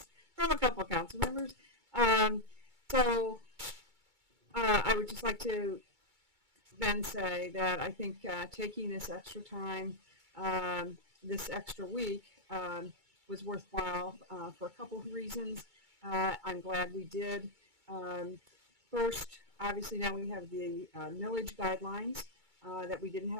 a couple of council members. So I would just like to then say that I think taking this extra time, this extra week, was worthwhile for a couple of reasons. I'm glad we did. First, obviously now we have the millage guidelines that we didn't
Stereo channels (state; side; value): late; left; 2.2 ms